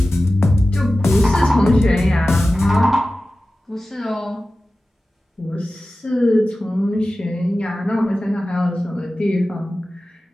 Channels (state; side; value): normal; both; correlation 0.95